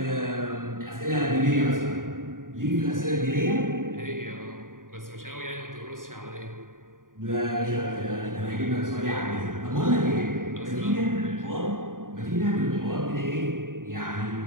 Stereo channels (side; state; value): left; late; 0.90 ms